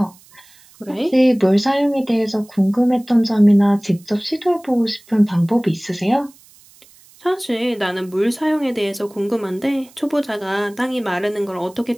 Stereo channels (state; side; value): noise; right; hiss, 27 dB below the sound